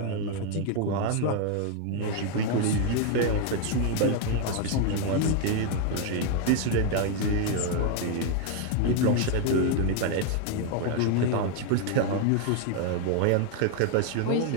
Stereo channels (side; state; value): both; different; correlation 0.01